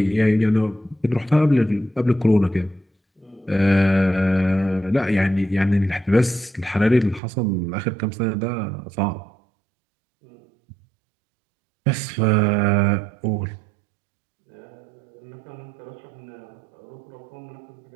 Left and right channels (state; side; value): drops out; left; at 7.2 s